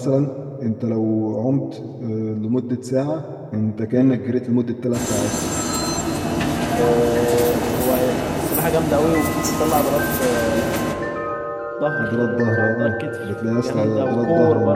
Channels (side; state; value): both; identical; correlation 1.00